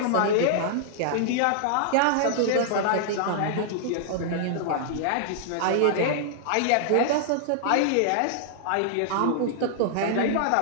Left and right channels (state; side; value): different; both; correlation -0.01